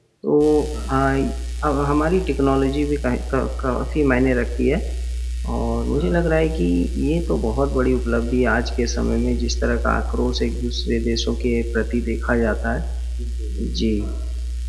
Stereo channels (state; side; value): identical; both; correlation 1.00